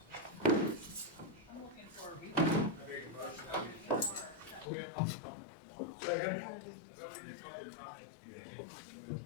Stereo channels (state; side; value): drops out; right; at 4.7 s